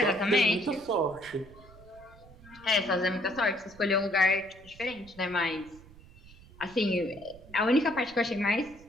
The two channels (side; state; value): right; noise; rumble, 22 dB below the sound